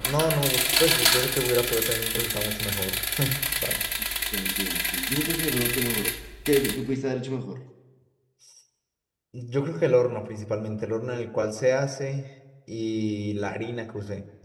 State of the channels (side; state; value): both; identical; correlation 1.00